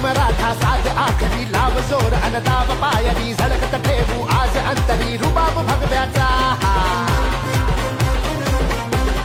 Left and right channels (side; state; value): both; identical; correlation 1.00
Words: मराठा साज आखरी लाव जोर अनदाव पायरी झळकत ठेवू आज अंतरी रुबाब भगव्याचा